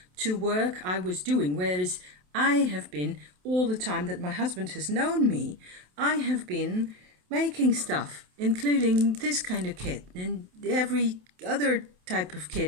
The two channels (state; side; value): late; left; 27 ms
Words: to work I was doing. Whereas I have been, all the time that my husband has known me, I have been making stuff, including this kind of kit and every other type of